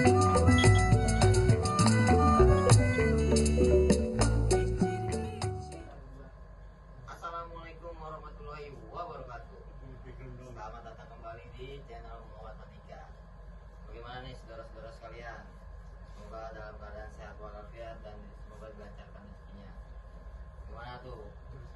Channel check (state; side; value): identical; both; correlation 1.00